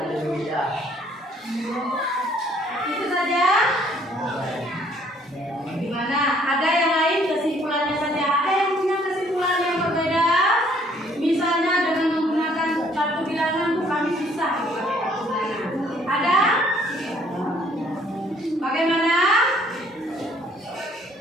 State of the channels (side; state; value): both; normal; correlation 0.62